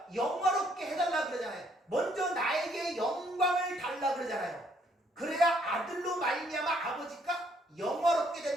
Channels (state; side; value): normal; both; correlation 0.67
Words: 영화롭게 해달라 그러잖아요. 먼저 나에게 영광을 달라 그러잖아요. 그래야 아들로 말미암아 아버지가 영화롭게